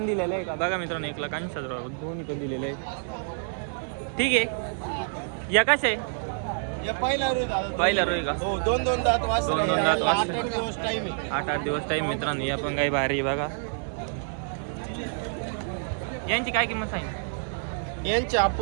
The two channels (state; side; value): silent; left; digital silence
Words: दिलेले आहे का. बघा मित्रांनो 1,80,000 दोन्ही पण दिलेले आहे. ठीक आहे या कसे आहे. या पहिला रोज दादा. पहिला रोज का. हो 2-2 दात वासरे. 2-2 दात वासरे. 8-8 दिवस टाइम आहे. 8-8 दिवस टाईम मित्रांनो. या पण गाई भारी आहे. बघा यांची काय किंमत सांगितली. यांचे